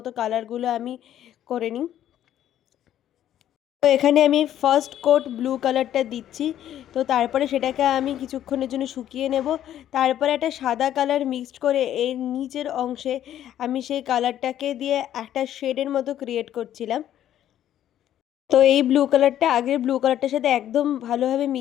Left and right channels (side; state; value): right; quieter; 11.4 dB